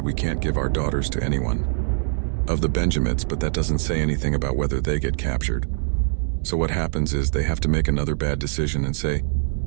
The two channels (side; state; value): left; silent; 63 dB below the other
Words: we can't give our daughters to anyone of the Benjamites, but that doesn't say anything about whether they get captured. So what happens is they have to make another bad decision and say,